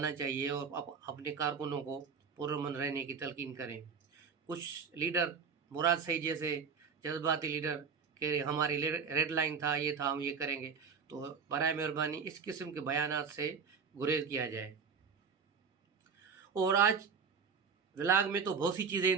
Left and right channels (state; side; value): quieter; left; 6.1 dB